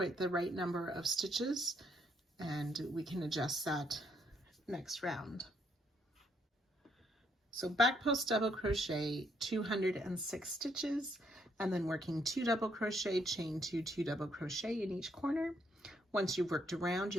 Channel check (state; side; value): normal; both; correlation 0.71